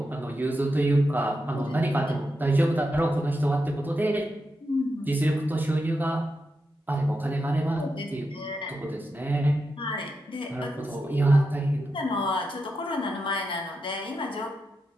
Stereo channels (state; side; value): normal; both; correlation 0.87